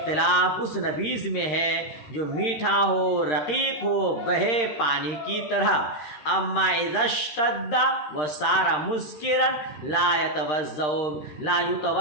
اس نبیذ میں ہے جو میٹھا ہو، رقیق ہو، بہے پانی کی طرح۔ اما اذا اشتد وصار مسکرا لا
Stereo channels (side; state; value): right; late; 13 ms